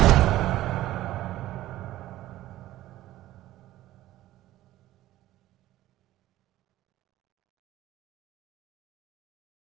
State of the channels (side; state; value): left; quieter; 15.1 dB